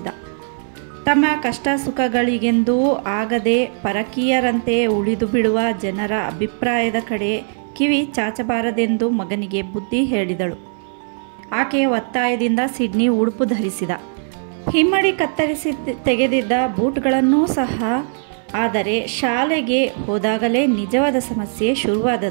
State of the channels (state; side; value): silent; left; digital silence